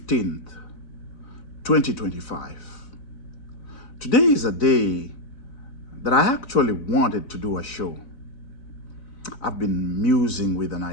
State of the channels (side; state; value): right; late; 4.0 ms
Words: 2025. Today is a day that I actually wanted to do a show. I've been musing with an